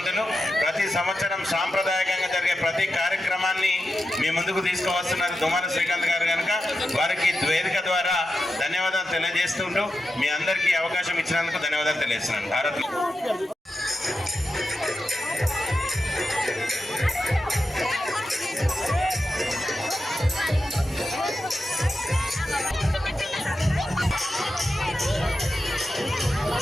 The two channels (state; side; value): normal; both; correlation 0.90